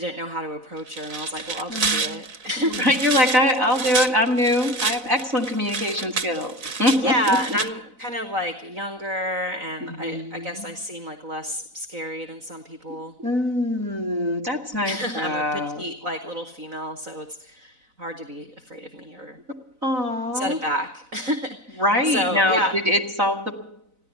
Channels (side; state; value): left; late; 4.0 ms